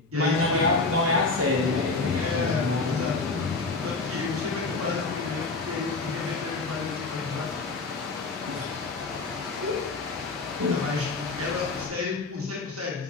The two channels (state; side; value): quieter; right; 3.7 dB